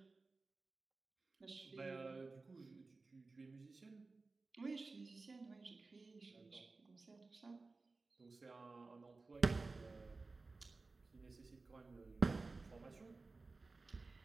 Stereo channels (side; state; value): left; quieter; 3.7 dB